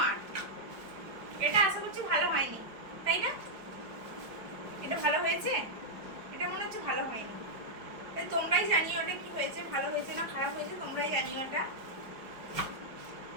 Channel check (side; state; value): left; late; 5.1 ms